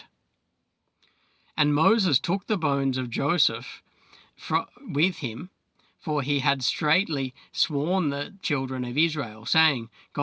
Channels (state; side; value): identical; both; correlation 1.00